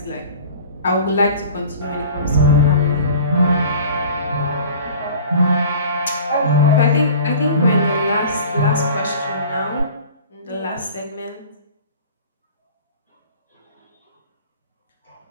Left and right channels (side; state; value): both; inverted; correlation -0.43